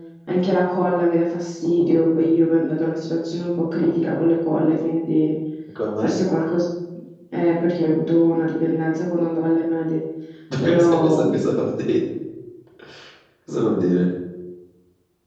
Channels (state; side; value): identical; both; correlation 1.00